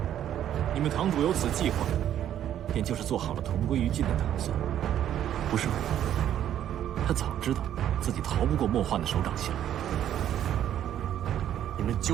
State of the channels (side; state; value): left; quieter; 10.8 dB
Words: 你们堂主有此计划，便就是做好了同归于尽的打算，不是吗？他早知道自己逃不过莫幻的手掌心。你们